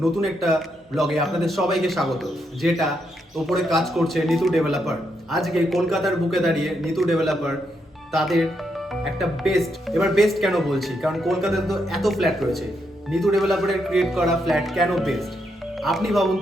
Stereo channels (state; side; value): normal; both; correlation 0.79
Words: নতুন একটা ব্লগে আপনাদের সবাইকে স্বাগত। যেটা ওপরে কাজ করছে নিতু ডেভেলপার। আজকে কলকাতার বুকে দাঁড়িয়ে নিতু ডেভেলপার তাদের একটা বেস্ট কেন বলছি, কারণ কলকাতাতে তো এত ফ্ল্যাট রয়েছে, নিতু ডেভেলপারের ক্রিয়েট করা ফ্ল্যাট কেন বেস্ট। আপনি ভাবুন